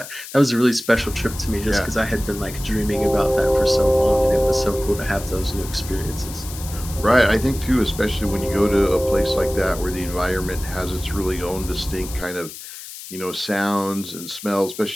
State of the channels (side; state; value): left; noise; hiss, 13 dB below the sound